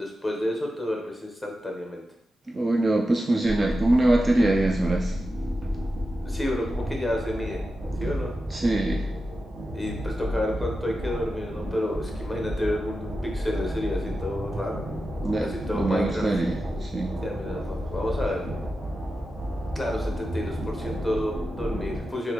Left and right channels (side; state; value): both; normal; correlation 0.91